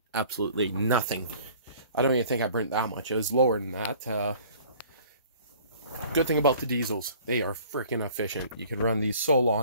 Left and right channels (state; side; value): inverted; both; correlation -0.51